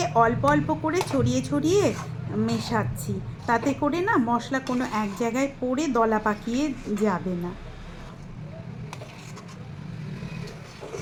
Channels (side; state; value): both; identical; correlation 1.00